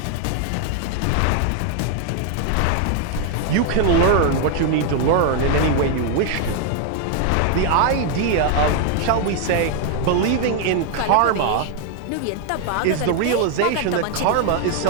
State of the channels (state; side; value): different; both; correlation 0.00